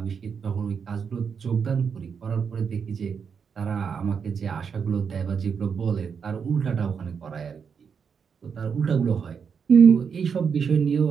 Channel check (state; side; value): quieter; left; 6.4 dB